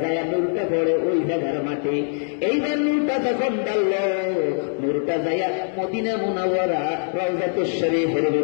যায় নূরটা পড়ে ওই জায়গার মাটি। এইবার নূরটা যখন ডাললো, নূরটা যাইয়া মদিনা মুনাওয়ারা রওজাতুশ শরীফের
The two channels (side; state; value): right; silent; 64 dB below the other